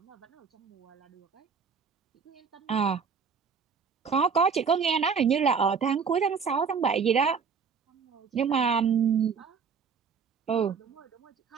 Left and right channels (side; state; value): left; quieter; 5.9 dB